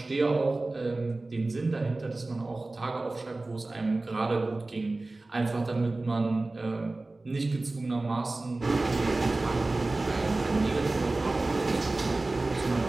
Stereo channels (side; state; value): left; quieter; 3.1 dB